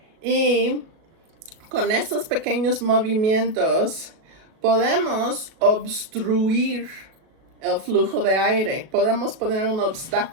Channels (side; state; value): left; late; 37 ms